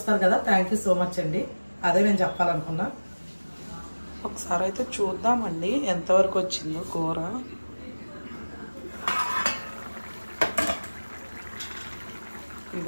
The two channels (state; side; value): inverted; both; correlation -1.00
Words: కదా. థ్యాంక్ యూ సో మచ్ అండి. అదే నేను చెప్పాలనుకున్నా. ఒకసారి అయితే చూద్దామండి ఎంతవరకు వచ్చిందో కూర.